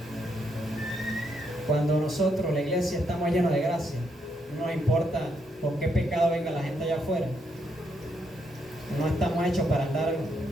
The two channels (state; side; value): normal; both; correlation 0.77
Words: Cuando nosotros, la iglesia, estamos llenos de gracia, no nos importa por qué pecado venga la gente allá afuera. No estamos hechos para andar,